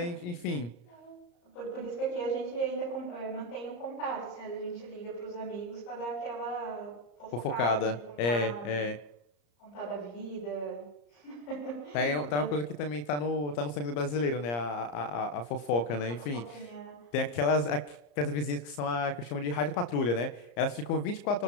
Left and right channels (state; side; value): late; right; 34 ms